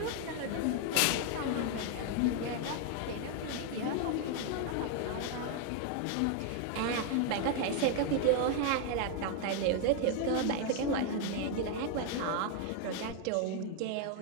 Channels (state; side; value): different; both; correlation 0.00